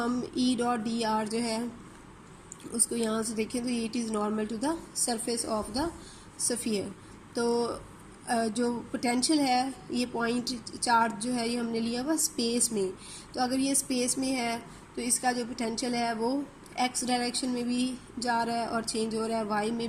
ई डॉट डी आर जो है उसको यहाँ से देखें तो it is normal to the surface of the sphere. तो जो पोटेंशियल है ये पॉइंट चार्ज जो है ये हमने लिया हुआ स्पेस में, तो अगर ये स्पेस में है तो इसका जो पोटेंशियल है वो एक्स डायरेक्शन में भी जा रहा है और चेंज हो रहा है, वाई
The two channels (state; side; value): identical; both; correlation 1.00